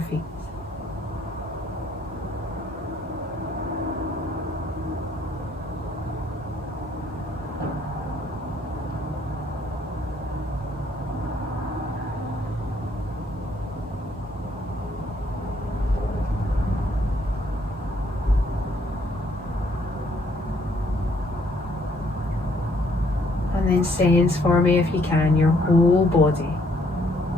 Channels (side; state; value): both; normal; correlation 0.67